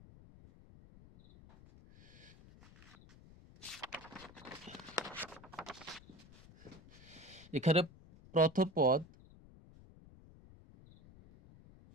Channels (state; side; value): noise; left; rumble, 21 dB below the sound